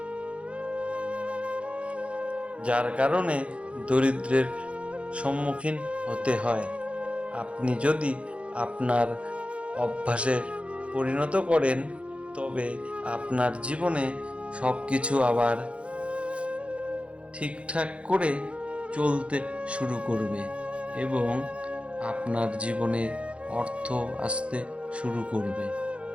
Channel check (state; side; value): late; left; 0.061 ms